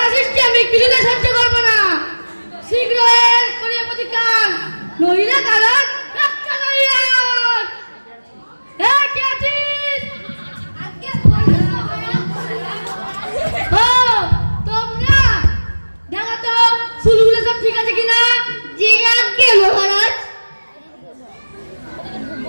সৃষ্টি আমি কিছুতে সহ্য করবো না। শীঘ্র এর করিয়া প্রতিকার, নইলে কারণ রক্ষা করিয়া। কে আছিস? আগে তোমরা দেখো তো চুলগুলো সব ঠিক আছে কিনা? জি আজ্ঞে মহারাজ।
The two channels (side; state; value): both; inverted; correlation -1.00